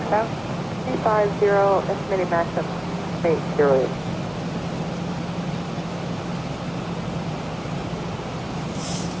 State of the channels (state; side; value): noise; left; hum, 23 dB below the sound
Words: 350, estimated max of 808.